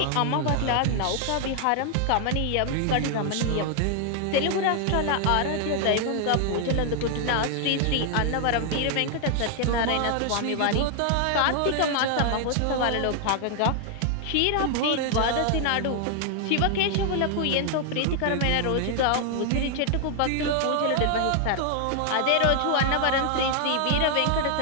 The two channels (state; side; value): different; both; correlation 0.00